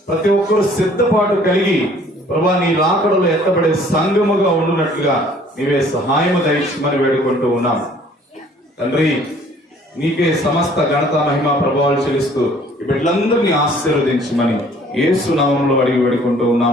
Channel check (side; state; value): both; normal; correlation 0.56